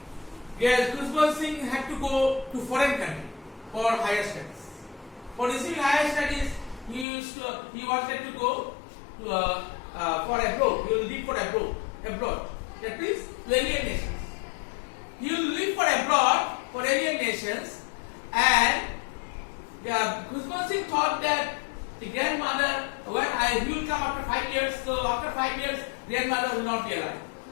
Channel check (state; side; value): drops out; right; at 7.1 s